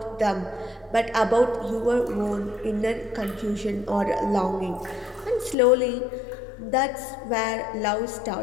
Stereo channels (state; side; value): drops out; right; at 5.6 s